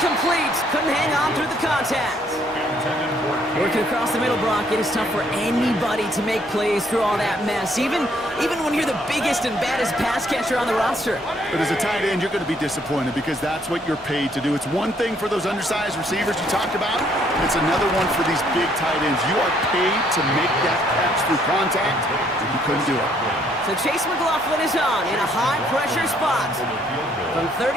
Couldn't hang on through the contact. Working across the middle, Brock, it is tough for anybody to make plays through all that mess, even when you're the biggest and baddest pass catcher on the roster. But as a tight end, you're going to be disappointed because that's what you're paid to do. It's one thing for those undersized receivers you talked about. It's another one for these big tight ends. You are paid to make that catch through contact, and you couldn't do it. So Chase McLaughlin is on in a high-pressure spot from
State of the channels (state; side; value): normal; both; correlation 0.67